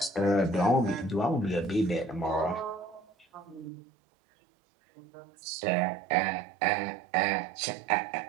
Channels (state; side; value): drops out; left; at 3.7 s